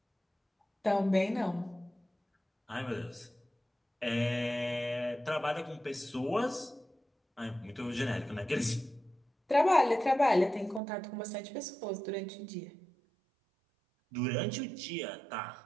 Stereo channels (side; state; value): left; drops out; at 10.8 s